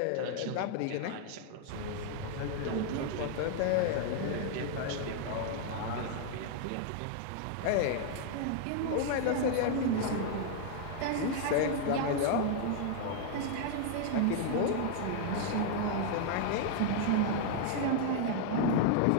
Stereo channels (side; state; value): both; different; correlation 0.00